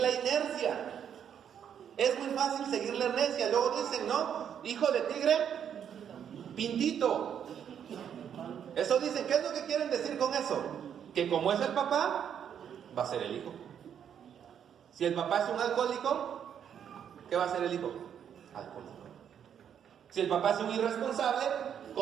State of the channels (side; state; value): left; quieter; 8.7 dB